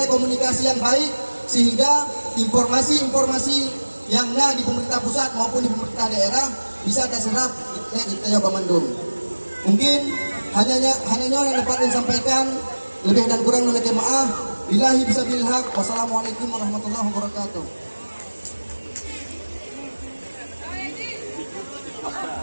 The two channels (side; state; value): both; inverted; correlation -1.00